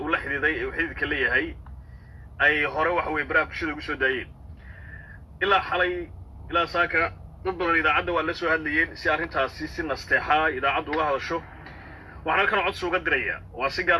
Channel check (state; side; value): identical; both; correlation 1.00